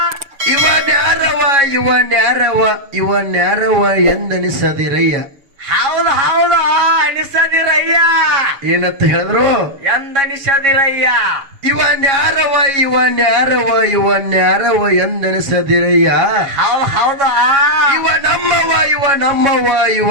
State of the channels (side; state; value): left; late; 7.3 ms